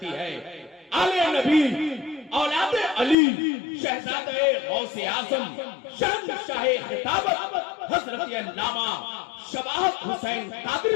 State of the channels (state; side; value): drops out; right; at 3.2 s